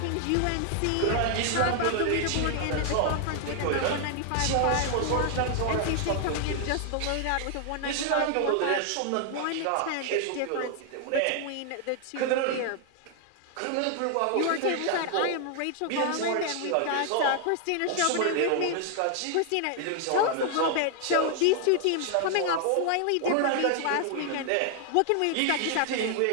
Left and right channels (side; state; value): both; different; correlation 0.00